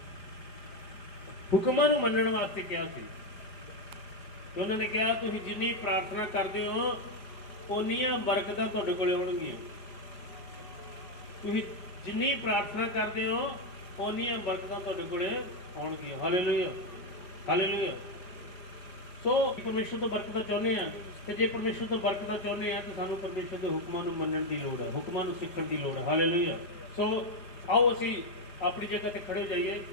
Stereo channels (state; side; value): late; right; 5.0 ms